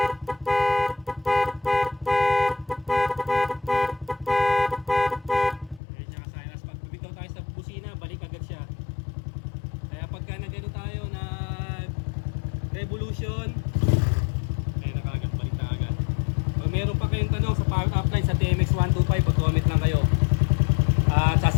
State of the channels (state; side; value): drops out; right; at 5.8 s